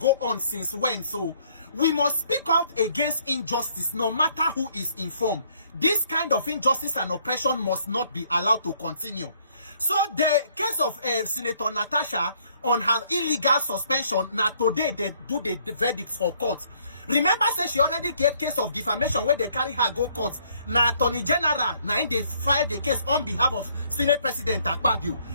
on since when? So we must speak out against injustice no matter who is informed. This kind of injustice and oppression must not be allowed to continue. So the case of Senator Natasha on her illegal suspension, now today they do the verdicts for court. Remember, say she already gave case of defamation where they carry her go court. Now Attorney General, now they filed the case on behalf of Senate President Akpabio.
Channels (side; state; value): both; inverted; correlation -0.65